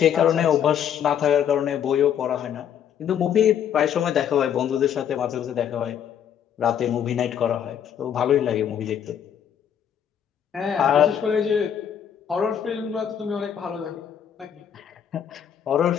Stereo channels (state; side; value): quieter; right; 8.9 dB